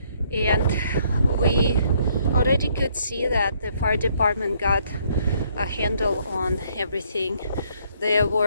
And we already could see that the fire department got a handle on everything. There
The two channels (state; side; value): inverted; both; correlation -0.67